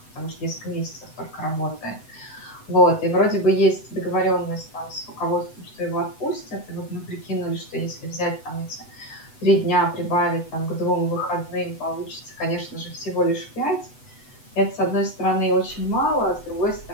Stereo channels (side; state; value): right; late; 8.0 ms